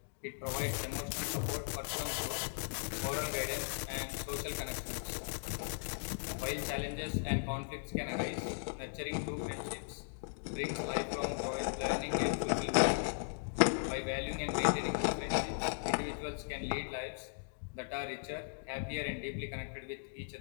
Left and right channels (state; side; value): silent; right; digital silence